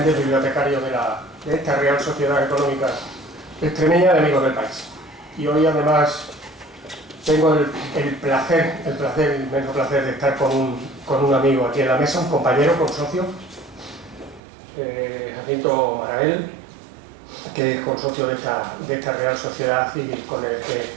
bibliotecario de esta Real Sociedad Económica Extremeña de Amigos del País. Y hoy además tengo el inmenso placer de estar con un amigo aquí en la mesa, un compañero, consocio, Jacinto Marabel, que es consocio de esta Real Sociedad y con el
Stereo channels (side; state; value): left; drops out; at 14.4 s